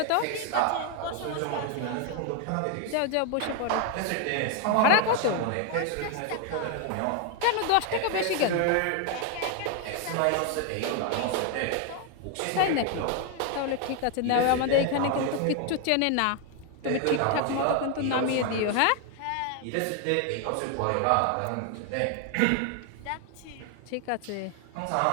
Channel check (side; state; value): both; different; correlation 0.01